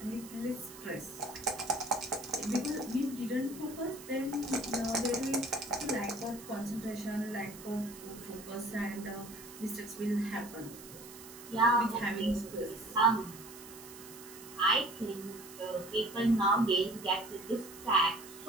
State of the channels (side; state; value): right; noise; hiss, 16 dB below the sound